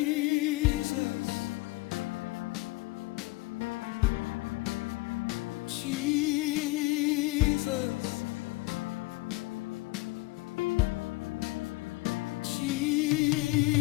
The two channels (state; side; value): quieter; right; 22.4 dB